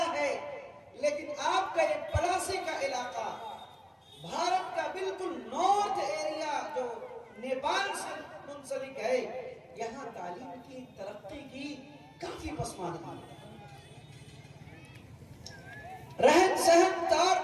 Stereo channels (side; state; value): both; identical; correlation 1.00